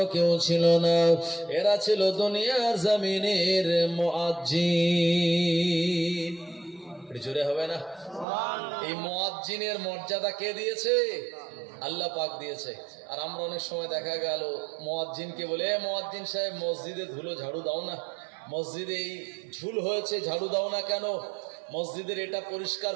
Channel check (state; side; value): drops out; left; at 8.2 s